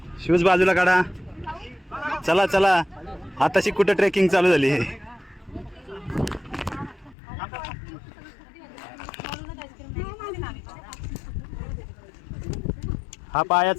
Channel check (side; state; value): right; drops out; at 7.2 s